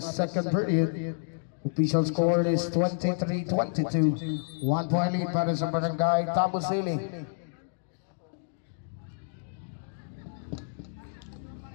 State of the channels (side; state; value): right; silent; digital silence